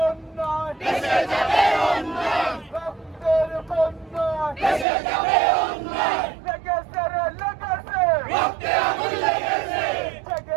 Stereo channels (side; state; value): left; drops out; at 4.9 s